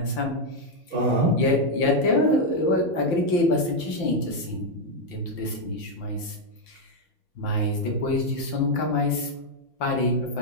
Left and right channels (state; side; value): late; right; 5.8 ms